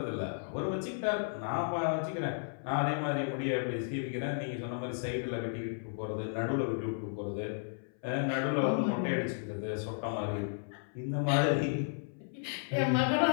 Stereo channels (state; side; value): silent; right; 55 dB below the other